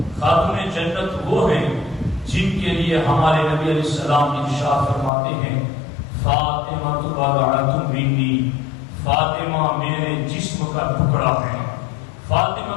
خاتون جنت وہ ہیں جن کے لیے ہمارے نبی علیہ السلام ارشاد فرماتے ہیں فاطمہ بضعۃ منی، فاطمہ میرے جسم کا ٹکڑا ہے۔ فاطمہ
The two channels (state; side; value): drops out; right; at 5.1 s